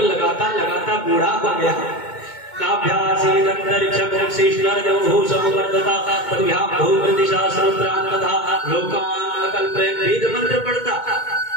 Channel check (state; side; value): late; right; 2.2 ms